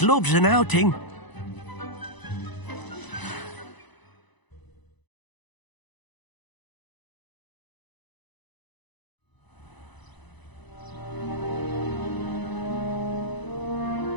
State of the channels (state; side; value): late; right; 1.0 ms